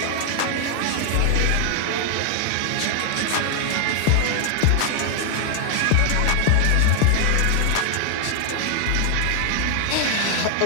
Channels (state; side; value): different; both; correlation 0.00